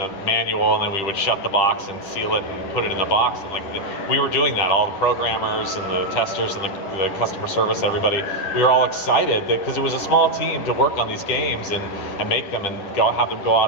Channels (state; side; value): late; right; 10 ms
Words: manual, and then we would shut the box and seal it and put it in the box. And we were doing that, all the programmers and the testers and the customer service, everybody. We were all excited because it was a small team to work on these games and make them and have them go